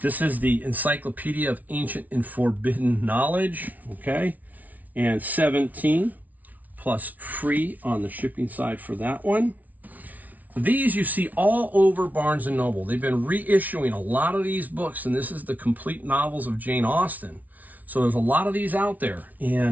This is the Encyclopedia of Ancient and Forbidden Knowledge, okay? And 17 plus free on the shipping side for that one. These you see all over Barnes & Noble. They've been reissuing a lot of these books, and this is the complete novels of Jane Austen. So there's a lot of these out there.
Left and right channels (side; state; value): left; late; 0.075 ms